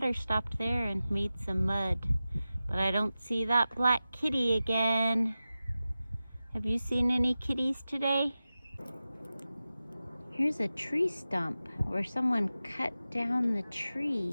stopped there and made some mud. But I don't see that black kitty again. Have you seen any kitties today? Here's a tree stump where someone cut down the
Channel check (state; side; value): inverted; both; correlation -0.94